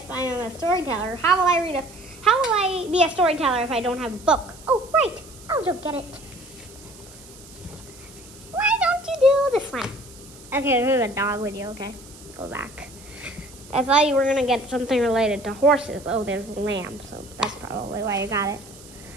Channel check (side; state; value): right; noise; hiss, 20 dB below the sound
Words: I am a storyteller, how will I be a storyteller if I don't have a book? Oh, right. I'll go get it. Why don't you do this one? Okay, there's a dog with you, okay? Go back. I thought you were going to get something related to horses. Oh, there's a lamb, so that's probably why you got it.